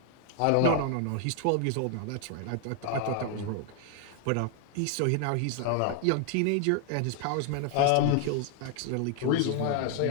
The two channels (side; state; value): both; different; correlation 0.00